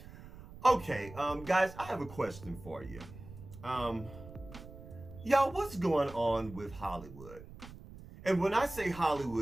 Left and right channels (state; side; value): noise; right; rumble, 16 dB below the sound